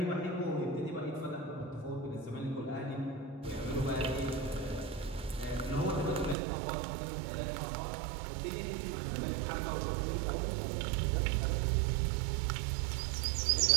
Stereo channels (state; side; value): drops out; left; at 6.4 s